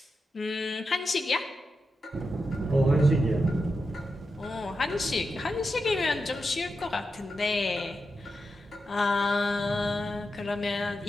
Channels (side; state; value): both; normal; correlation 0.88